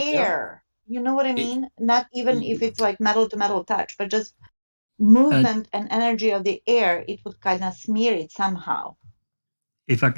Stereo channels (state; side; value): inverted; both; correlation -1.00